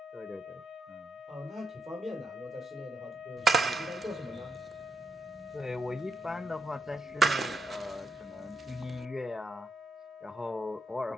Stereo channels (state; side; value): normal; both; correlation 0.79